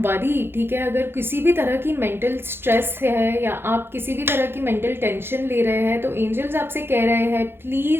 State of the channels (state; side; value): late; left; 0.11 ms